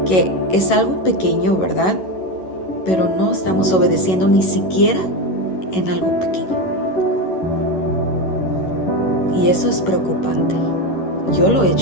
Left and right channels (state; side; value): late; right; 11 ms